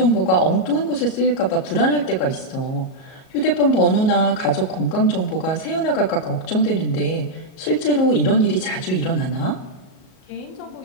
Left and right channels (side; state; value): right; late; 37 ms